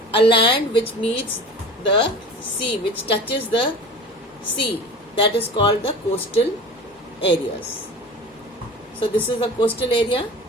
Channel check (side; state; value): both; normal; correlation 0.36